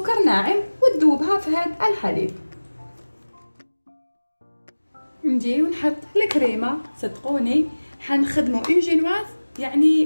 ناعم وتذوبها في هذا الحليب. نجي ونحط الكريمه. صدقوني حنخدموا اون جينواز يعني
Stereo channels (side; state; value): both; inverted; correlation -1.00